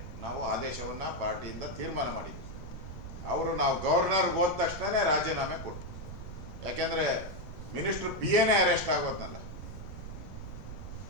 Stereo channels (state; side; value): noise; right; rumble, 10 dB below the sound